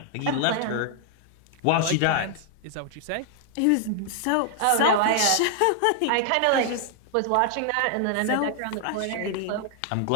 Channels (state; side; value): different; both; correlation 0.00